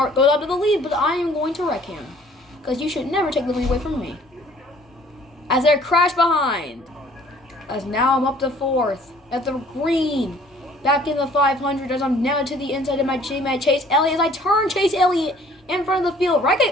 goes up to the lead, but I am going to wreck him. Because you should never take the lead away from me. As they crash behind. As now I'm up to 4th. At the green. Back in the 500 as I'm now to the inside of my teammate Chase Elliott. As I turn Chase Elliott in front of the field.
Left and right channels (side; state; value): both; normal; correlation 0.56